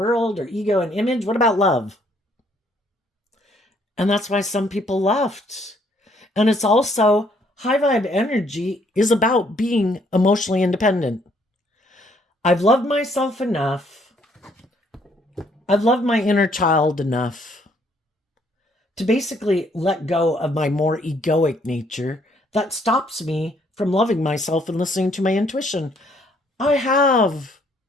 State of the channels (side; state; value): both; normal; correlation 0.66